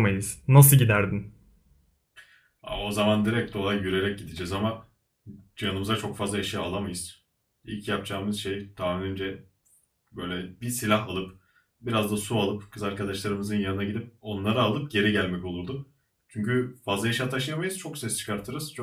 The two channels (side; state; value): both; identical; correlation 1.00